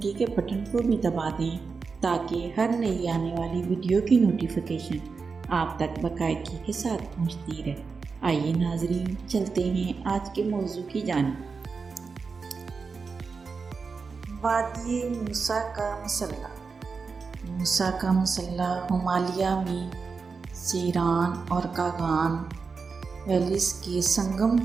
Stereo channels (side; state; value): left; quieter; 4.9 dB